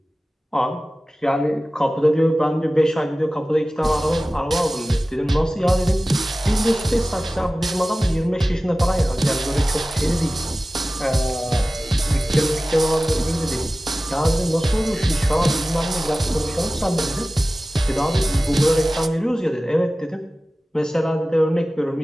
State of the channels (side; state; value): both; normal; correlation 0.97